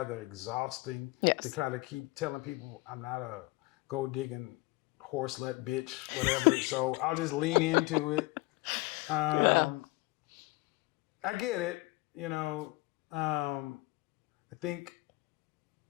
exhausting to kind of keep telling people I'm not a gold digging horse slut bitch, whatever. So I'll just lean into it. I get it. I think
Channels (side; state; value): right; quieter; 21.9 dB